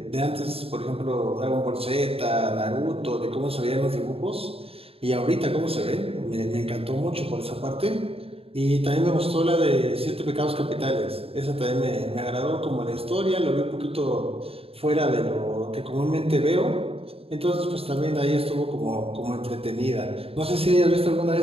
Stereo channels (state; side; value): late; left; 0.28 ms